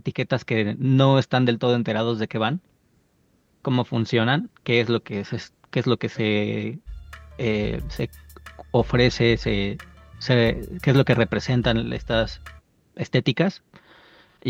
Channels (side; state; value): both; identical; correlation 1.00